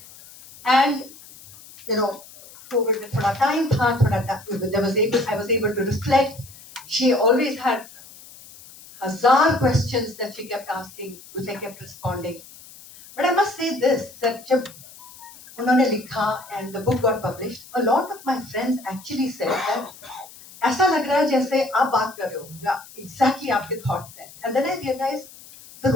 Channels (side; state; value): left; noise; hiss, 20 dB below the sound